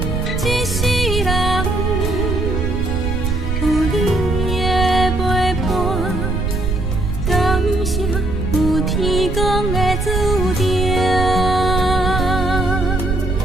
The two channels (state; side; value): noise; right; rumble, 2 dB below the sound